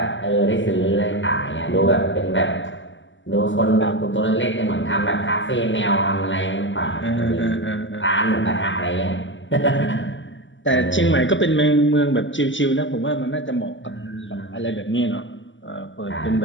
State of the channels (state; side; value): late; right; 0.55 ms